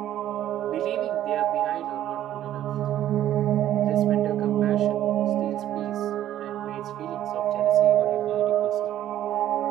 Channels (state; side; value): quieter; left; 12.2 dB